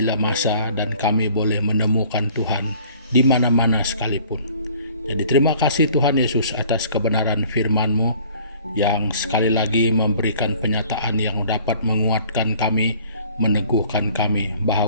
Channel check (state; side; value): inverted; both; correlation -0.53